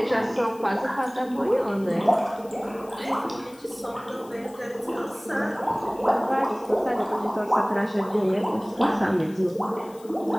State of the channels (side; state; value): left; noise; hiss, 25 dB below the sound